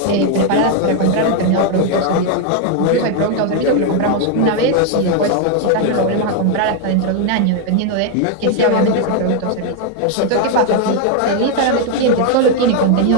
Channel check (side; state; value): both; different; correlation 0.01